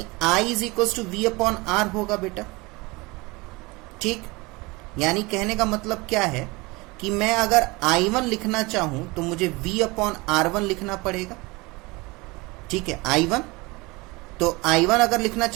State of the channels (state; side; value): quieter; left; 24.4 dB